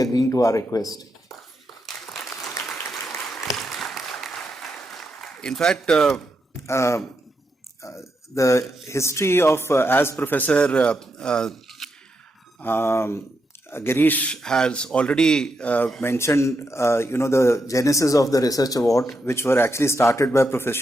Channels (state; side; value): normal; both; correlation 0.83